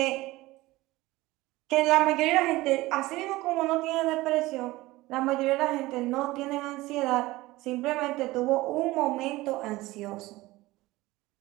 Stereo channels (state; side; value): quieter; left; 19.1 dB